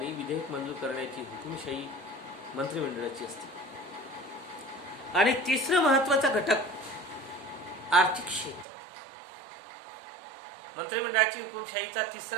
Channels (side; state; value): left; drops out; at 8.7 s